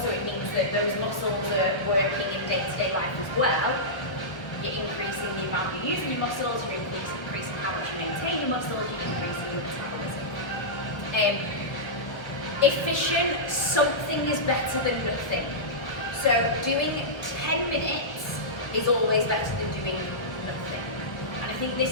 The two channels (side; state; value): right; late; 1.2 ms